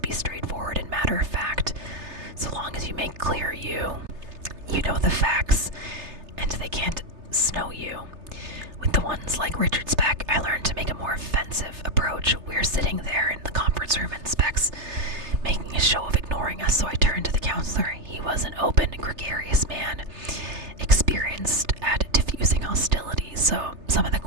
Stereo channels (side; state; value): left; late; 3.3 ms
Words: be straightforward and matter of fact. So long as you make clear you know the facts, and they can't snow you. With the ones like Richard Speck, I learned to make a more offensive approach. We're sitting there in the conference room and Speck's making a show of ignoring us, so I turned to the counselor. He was an open, gregarious man, experienced at diffusing hostilities, so some of the